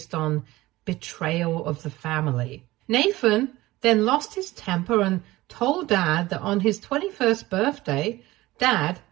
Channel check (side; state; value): left; quieter; 18.3 dB